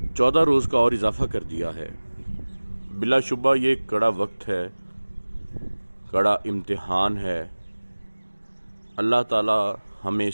14 रोज़ का और इजाफ़ा कर दिया है। बिलाशुबा ये कड़ा वक्त है, कड़ा इम्तिहान है। अल्लाह ताला हमें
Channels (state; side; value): inverted; both; correlation -1.00